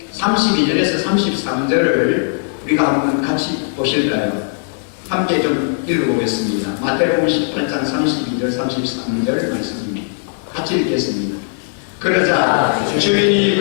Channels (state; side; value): silent; right; digital silence